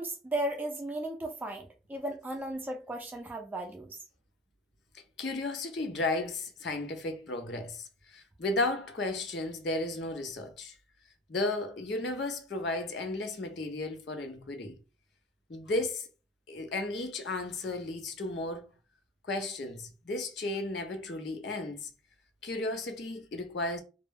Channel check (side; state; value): both; normal; correlation 0.32